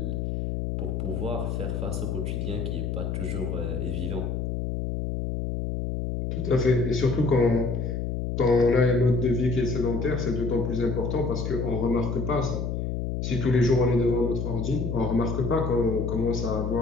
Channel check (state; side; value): noise; left; hum, 2 dB below the sound